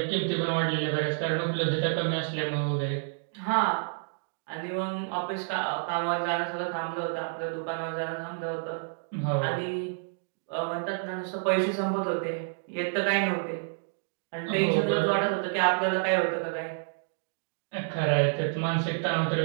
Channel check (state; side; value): silent; left; digital silence